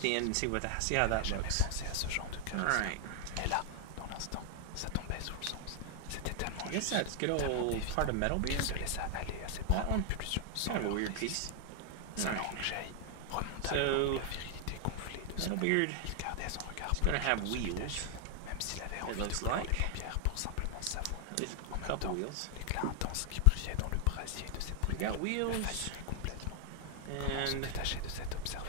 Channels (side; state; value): both; different; correlation 0.00